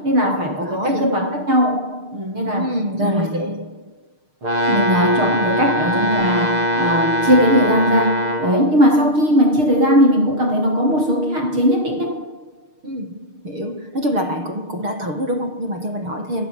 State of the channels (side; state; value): left; late; 6.6 ms